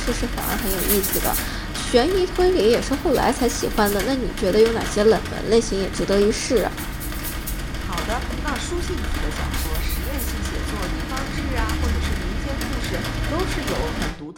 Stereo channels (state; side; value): identical; both; correlation 1.00